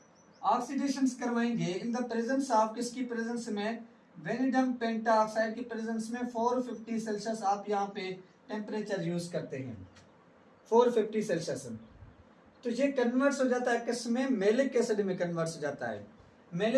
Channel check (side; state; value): both; identical; correlation 1.00